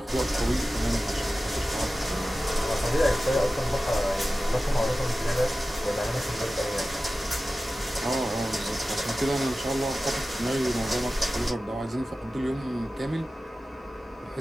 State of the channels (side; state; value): both; normal; correlation 0.95